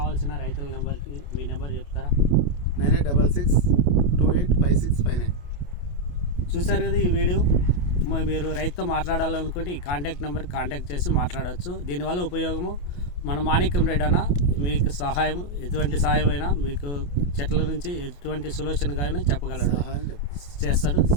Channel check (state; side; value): late; right; 28 ms